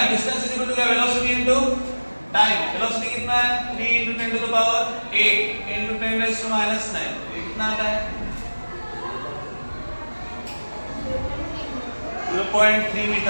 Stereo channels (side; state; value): both; inverted; correlation -1.00